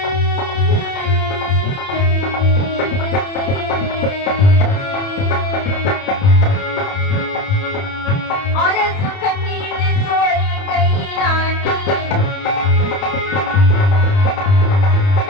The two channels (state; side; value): late; right; 30 ms